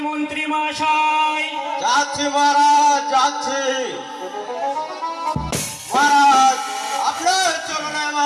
মন্ত্রী মশাই? যাচ্ছি মহারাজ, যাচ্ছি মহারাজ। আপনার চরণে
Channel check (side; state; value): both; identical; correlation 1.00